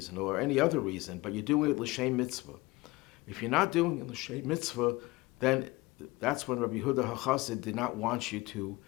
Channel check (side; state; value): right; quieter; 21.7 dB